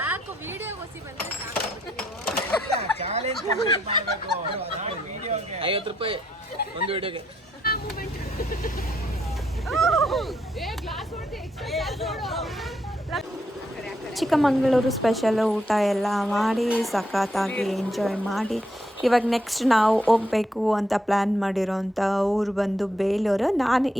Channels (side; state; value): both; normal; correlation 0.76